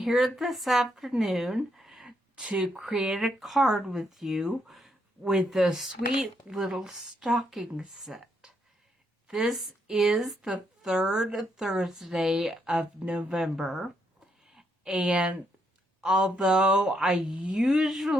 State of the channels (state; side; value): normal; both; correlation 0.77